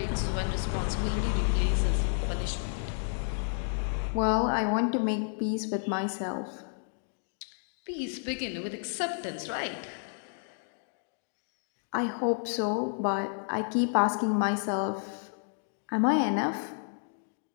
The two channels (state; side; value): silent; right; digital silence